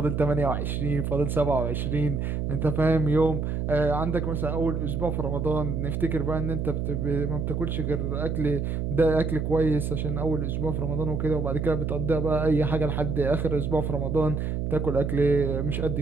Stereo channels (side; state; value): right; noise; hum, 1 dB below the sound